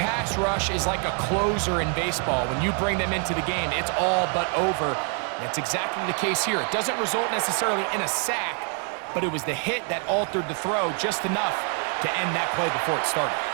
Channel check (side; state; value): left; quieter; 39.7 dB